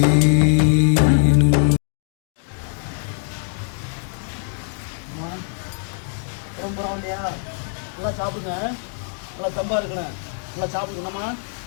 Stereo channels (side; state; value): right; silent; 64 dB below the other